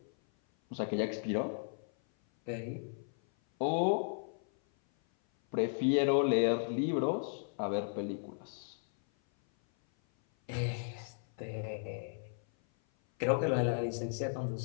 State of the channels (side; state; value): right; silent; 54 dB below the other